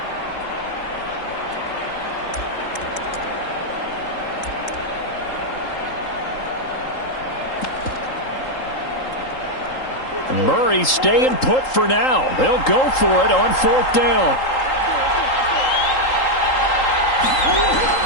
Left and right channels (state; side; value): late; right; 3.8 ms